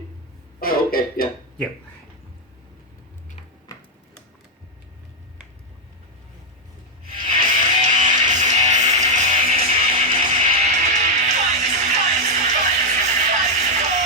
oh, okay, yeah. Yep.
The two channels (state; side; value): normal; both; correlation 0.01